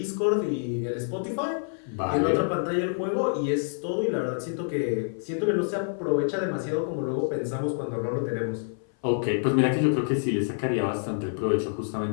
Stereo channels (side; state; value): right; silent; 56 dB below the other